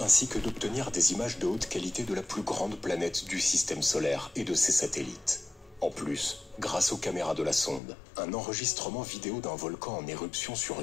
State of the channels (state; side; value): drops out; right; at 7.8 s